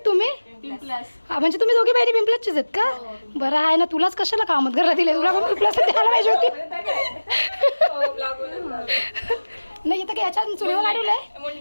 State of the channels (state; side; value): inverted; both; correlation -1.00